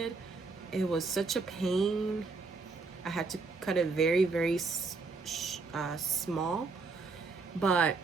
It was such a pain. I had to cut it very, very small. But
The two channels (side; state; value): left; quieter; 4.1 dB